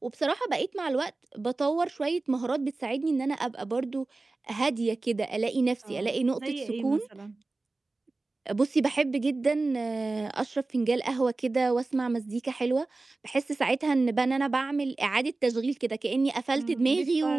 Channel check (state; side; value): quieter; left; 3.4 dB